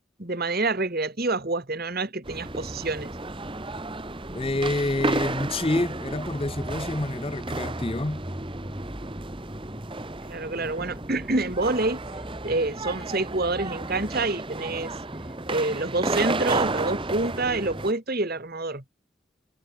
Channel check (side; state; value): both; normal; correlation 0.33